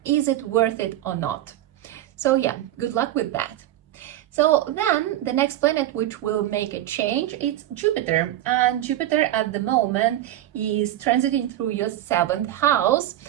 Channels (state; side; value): quieter; left; 13.5 dB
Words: is it worth it or not? So yeah, good luck with that. So then the next planet which will make a change, it's Jupiter. And Jupiter at the moment is transiting through your 7th house,